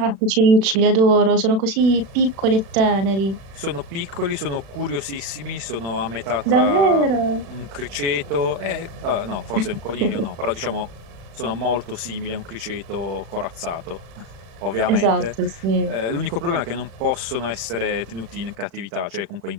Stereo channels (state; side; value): late; left; 35 ms